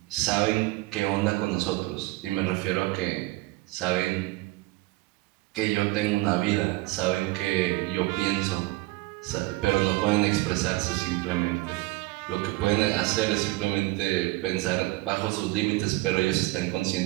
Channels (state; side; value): quieter; left; 20.7 dB